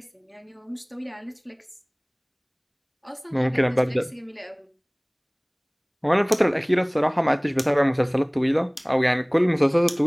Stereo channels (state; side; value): identical; both; correlation 1.00